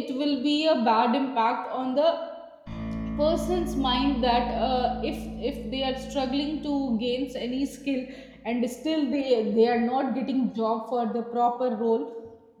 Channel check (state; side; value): identical; both; correlation 1.00